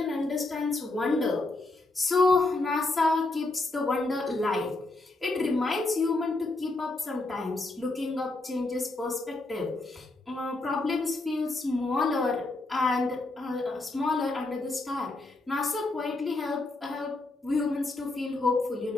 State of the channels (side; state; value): right; quieter; 3.0 dB